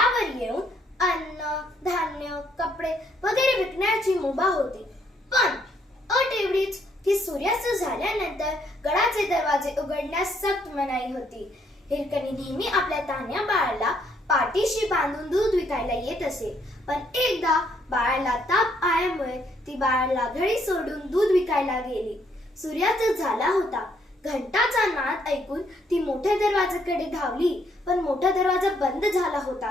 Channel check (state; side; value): normal; both; correlation 0.70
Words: येऊन अन्न, धान्य, कपडे वगैरे विकण्याची मुभा होती। पण अट एवढीच की सूर्यास्त झाल्यानंतर गडाचे दरवाजे उघडण्यास सक्त मनाई होती। हिरकणी नेहमी आपल्या तान्ह्या बाळाला पाठीशी बांधून दूध विकायला येत असे, पण एकदा बाळाला ताप आल्यामुळे ती बाळाला घरी सोडून दूध विकायला गेली। सूर्यास्त झाला होता। घंटाचा नाद ऐकून ती मोठ्या दरवाजाकडे धावली, पण मोठा दरवाजा बंद झाला